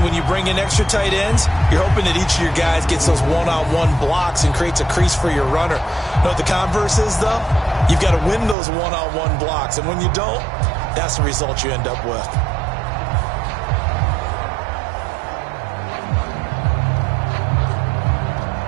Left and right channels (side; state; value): left; drops out; at 8.6 s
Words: when you bring in extra tight ends, you're hoping that each of your guys gets those one-on-one blocks and creates a crease for your runner. You know what the converse is, though? You've got to win those one-on-one blocks, and when you don't, that's the result you end up with.